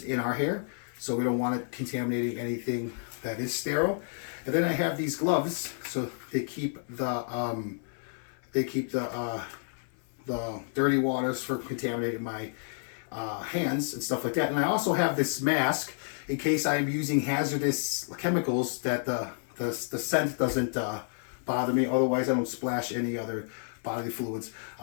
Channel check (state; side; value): silent; right; 58 dB below the other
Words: in our hair, so we don't want it contaminating anything that is sterile. And then I have these gloves, so they keep the dirty waters from contaminating my hands and stuff like that. And I also have this mask in case I'm using hazardous chemicals that the scent doesn't bother me. Otherwise, I don't splash any other bodily fluids